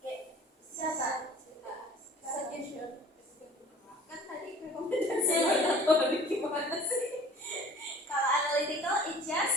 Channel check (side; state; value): both; normal; correlation 0.47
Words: Siapa? Suggestion. Kan tadi rekomendasi hortatory gimana sih? Kalau analytical, it